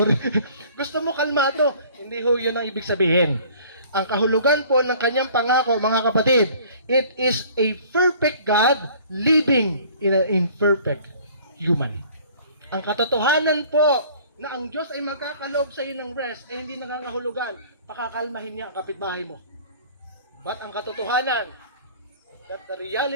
Gusto mo kalmado. Hindi ho yun ang ibig sabihin. Ang kahulugan po ng kanyang pangako, mga kapatid, it is a perfect God living in an imperfect human. Ang katotohanan po na ang Diyos ay magkakaloob sa iyo ng rest ay hindi nangangahulugan, pakakalmahin niya ang kapitbahay mo. But ang katotohanan, that the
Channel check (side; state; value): both; inverted; correlation -0.51